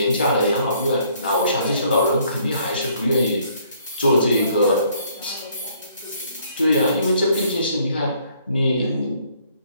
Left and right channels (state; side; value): inverted; both; correlation -0.64